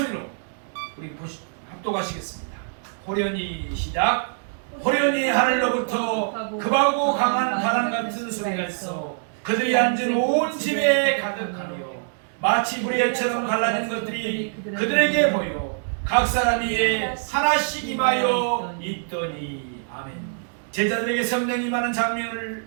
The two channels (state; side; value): silent; left; digital silence